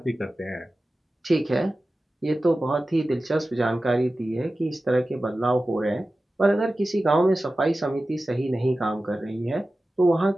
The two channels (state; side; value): normal; both; correlation 0.95